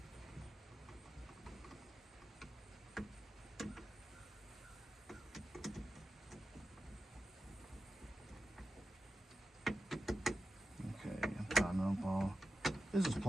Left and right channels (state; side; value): normal; both; correlation 0.91